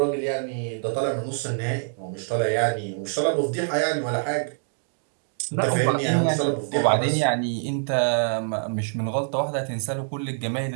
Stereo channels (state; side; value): silent; left; 62 dB below the other